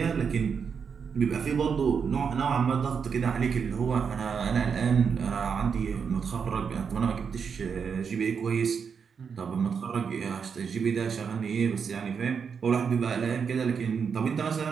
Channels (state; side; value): quieter; left; 6.4 dB